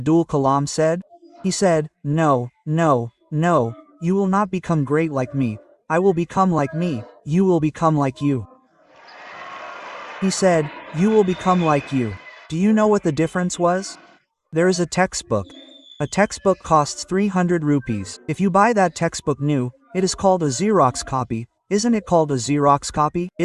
Kalam said? He said, "No, no, no, you will not become great like me. I will become like me. You will become like you." He said, "You will become like you." Do you know what the difference was? There is a textbook. A textbook costs 300 rupees. If you buy that textbook new, it is called a Xerox copy. Isn't it called a Xerox copy?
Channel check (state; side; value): identical; both; correlation 1.00